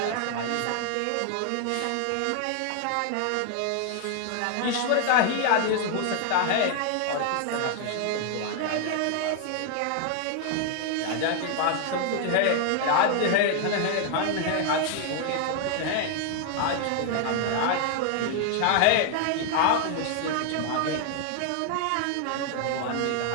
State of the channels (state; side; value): different; both; correlation 0.00